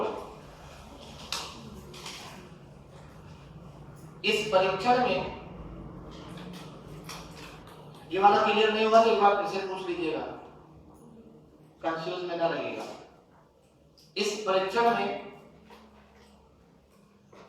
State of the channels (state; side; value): identical; both; correlation 1.00